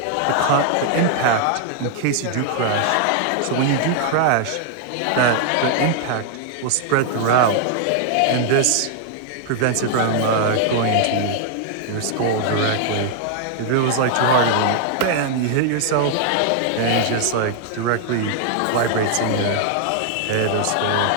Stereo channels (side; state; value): both; different; correlation 0.00